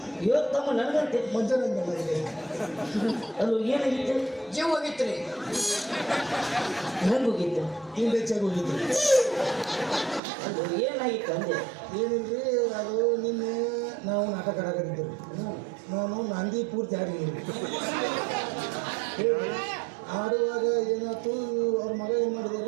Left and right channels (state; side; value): drops out; left; at 10.2 s